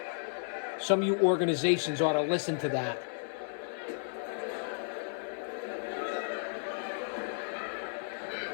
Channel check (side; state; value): right; silent; digital silence